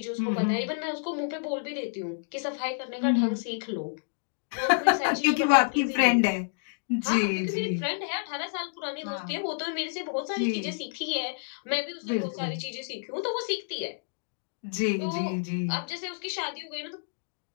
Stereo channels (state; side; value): silent; right; digital silence